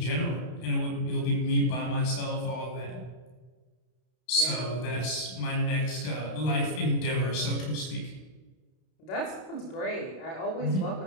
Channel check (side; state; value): right; late; 32 ms